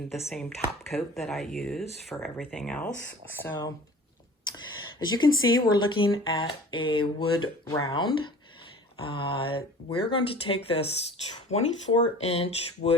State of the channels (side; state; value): both; normal; correlation 0.44